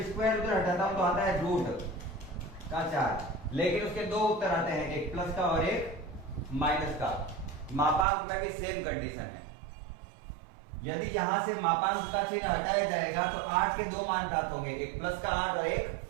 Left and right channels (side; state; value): left; drops out; at 8.1 s